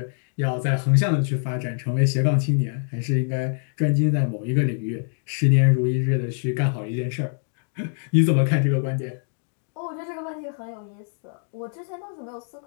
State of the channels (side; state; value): right; silent; digital silence